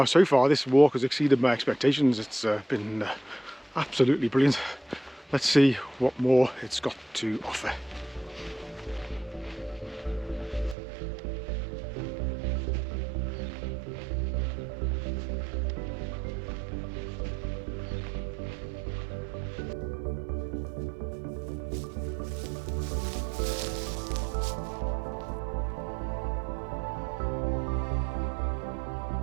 far this walk has exceeded my expectations. It's been absolutely brilliant. Let's see what more it's got to offer.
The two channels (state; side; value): drops out; left; at 10.8 s